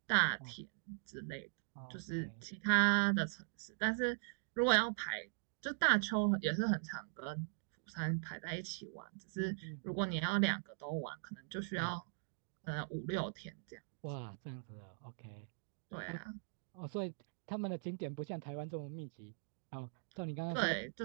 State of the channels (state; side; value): silent; left; digital silence